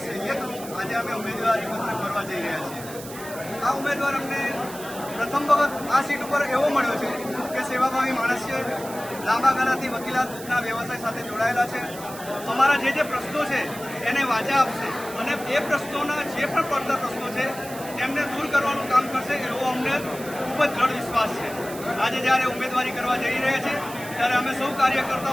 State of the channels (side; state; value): right; noise; hiss, 14 dB below the sound